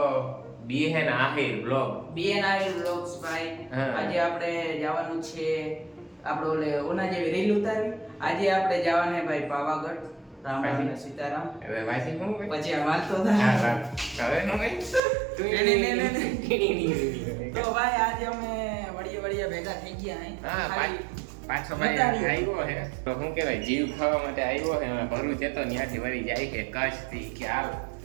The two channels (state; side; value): drops out; left; at 15.0 s